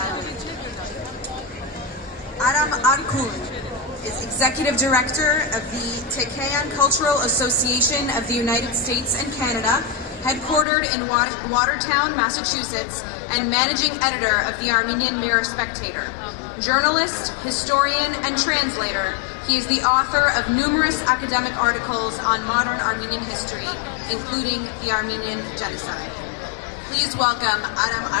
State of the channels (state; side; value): drops out; right; at 10.7 s